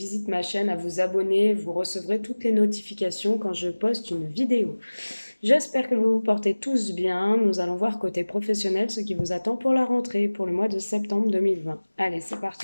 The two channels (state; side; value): inverted; both; correlation -1.00